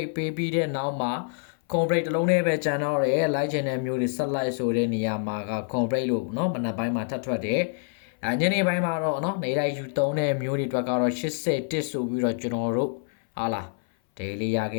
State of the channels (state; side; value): silent; right; 59 dB below the other